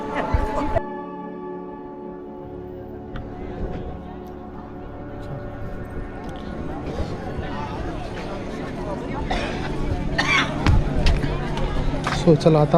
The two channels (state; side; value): identical; both; correlation 1.00